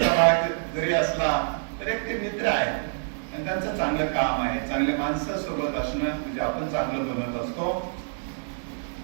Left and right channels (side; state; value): left; silent; digital silence